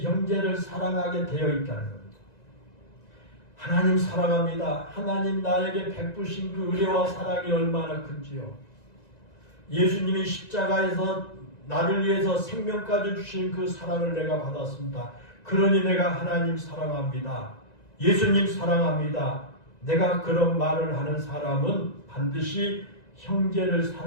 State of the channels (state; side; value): late; right; 1.9 ms